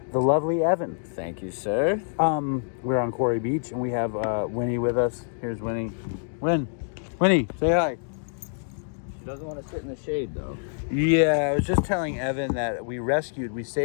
the lovely Evan. Thank you, sir. We're on Quarry Beach, and we have Winnie with us. Here's Winnie. Winnie, say hi. She doesn't want to sit in the shade, though. Yeah, I was just telling Evan that we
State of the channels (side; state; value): right; silent; digital silence